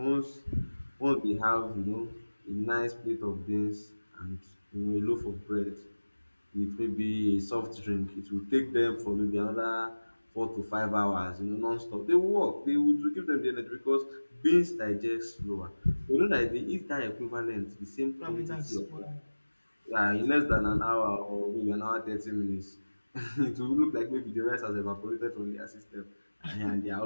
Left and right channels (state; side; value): inverted; both; correlation -1.00